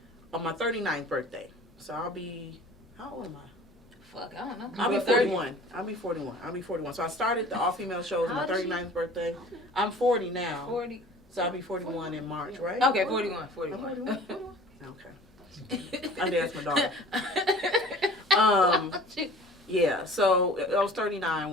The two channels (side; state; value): both; normal; correlation 0.46